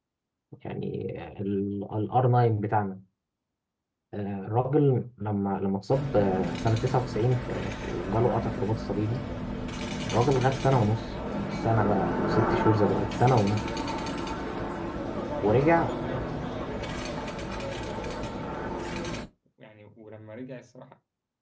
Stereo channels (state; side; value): identical; both; correlation 1.00